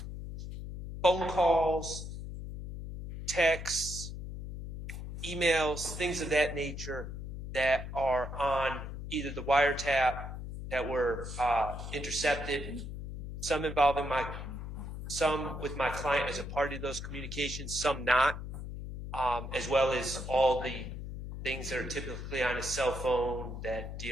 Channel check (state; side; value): noise; left; hum, 8 dB below the sound